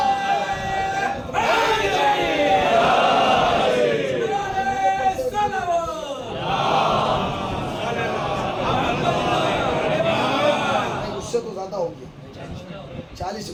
تو زیادہ ہو گیا، 40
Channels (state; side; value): identical; both; correlation 1.00